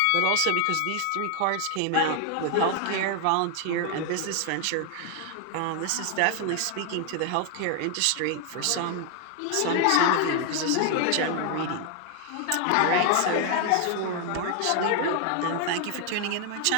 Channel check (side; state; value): both; different; correlation 0.00